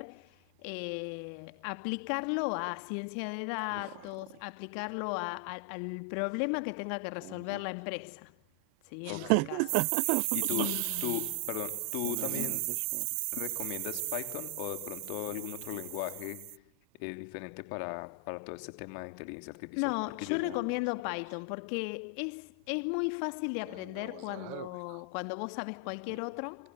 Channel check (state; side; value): different; both; correlation 0.00